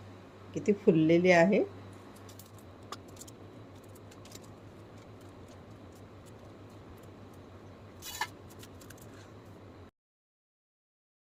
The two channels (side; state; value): both; identical; correlation 1.00